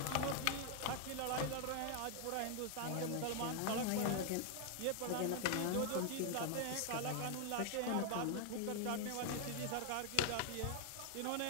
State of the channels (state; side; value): different; both; correlation 0.00